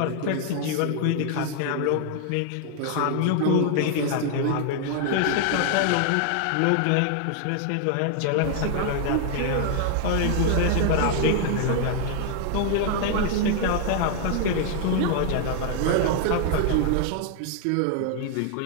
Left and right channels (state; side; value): different; both; correlation 0.00